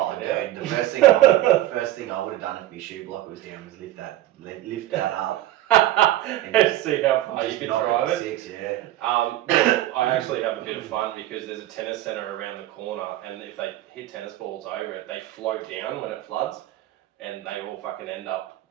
The first thing I would have done if my shoe blocker was down was lift that up. and see how far you can drive it. 6, yeah. I actually have a bit of fun because there's a tennis centre around the corner, and if they hit tennis balls over it, they float down when it floods, and they all fucking end up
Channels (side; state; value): left; quieter; 14.5 dB